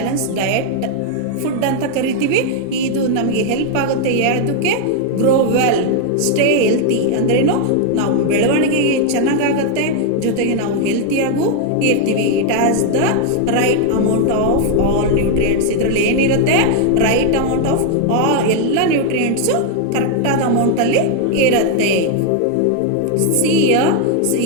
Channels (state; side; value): different; both; correlation 0.00